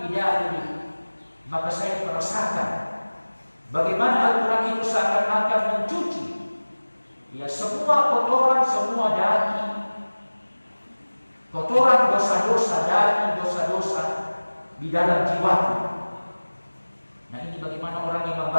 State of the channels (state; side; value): inverted; both; correlation -1.00